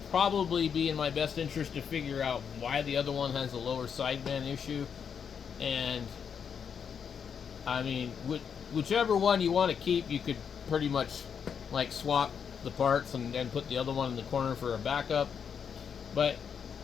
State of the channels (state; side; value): quieter; right; 7.1 dB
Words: probably be in my best interest to figure out why the other one has a lower sideband issue. And I mean, whichever one you want to keep, you could pretty much like swap the parts and put the other one in the corner for a backup. But